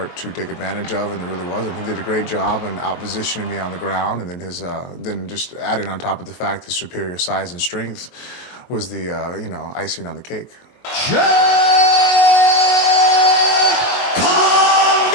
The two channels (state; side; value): late; right; 22 ms